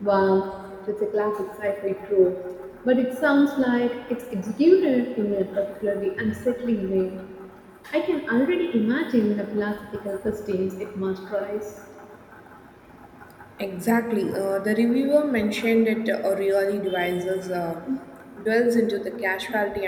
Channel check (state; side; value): identical; both; correlation 1.00